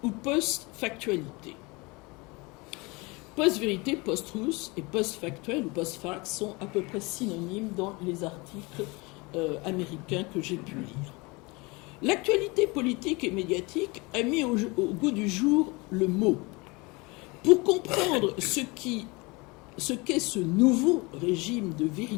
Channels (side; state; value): right; quieter; 25.9 dB